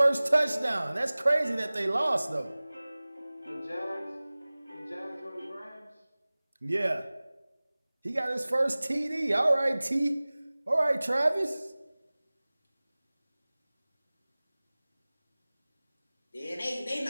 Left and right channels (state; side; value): inverted; both; correlation -0.99